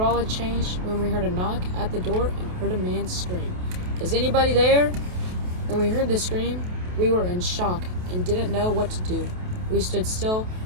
had changed when we heard a knock at the door and heard a man scream, "Is anybody there?" When we heard the scream, we were in shock and didn't know what to do. We stood still,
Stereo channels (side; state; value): left; late; 28 ms